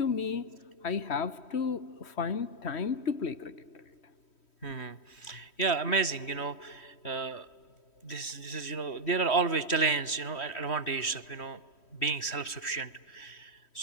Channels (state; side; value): late; right; 3.1 ms